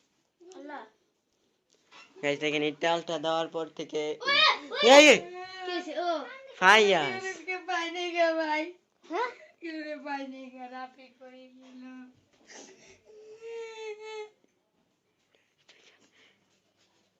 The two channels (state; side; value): identical; both; correlation 1.00